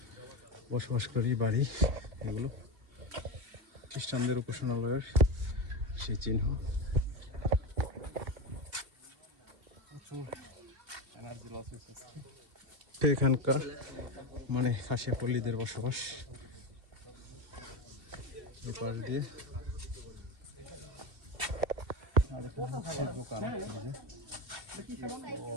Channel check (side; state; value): left; late; 2.7 ms